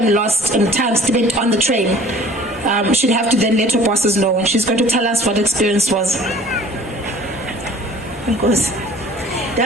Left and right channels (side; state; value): both; normal; correlation 0.49